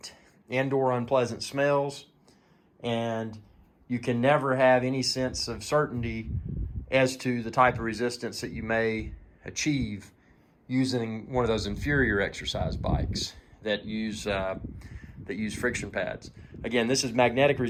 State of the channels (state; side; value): identical; both; correlation 1.00